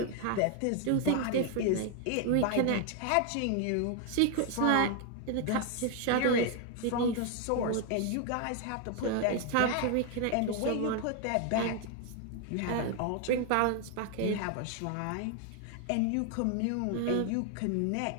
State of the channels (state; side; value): different; both; correlation 0.00